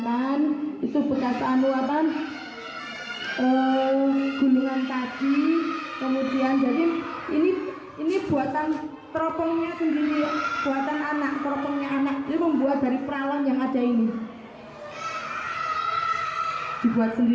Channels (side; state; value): both; identical; correlation 1.00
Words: Itu bekas gulungan tadi. Kemudian jadi ini buatan teropongnya sendiri, buatan anak, teropongnya anak. Ini membuat dari peralon yang ada ini. Dibuat